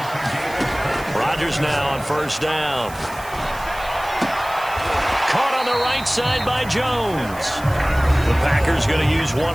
Rodgers now on first down. Caught on the right side by Jones. The Packers going to use one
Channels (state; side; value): noise; right; hiss, 18 dB below the sound